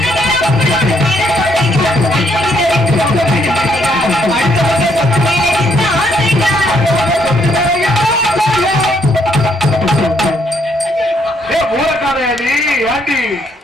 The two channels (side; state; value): both; normal; correlation 0.71